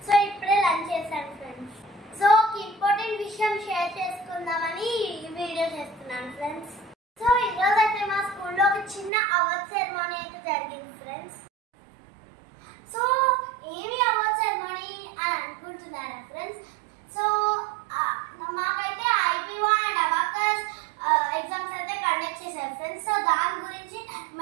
సో ఇప్పుడే లంచ్ చేశాను ఫ్రెండ్స్. సో ఒక ఇంపార్టెంట్ విషయం షేర్ చేసుకుందామని ఈ వీడియో చేస్తున్నాను ఫ్రెండ్స్. సో ఈరోజు అయితే మా స్కూల్లో ఒక చిన్న అవార్డ్ సెరమనీ అయితే జరిగింది ఫ్రెండ్స్. సో ఏమి అవార్డ్ సెరమనీ అని అనుకుంటున్నారా ఫ్రెండ్స్? సో మాకైతే ఐబీఓ అండ్ అబాకస్ ఎగ్జామ్స్ అయితే కండక్ట్ చేశారు ఫ్రెండ్స్. సో దాని గురించి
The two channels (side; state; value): left; drops out; at 9.1 s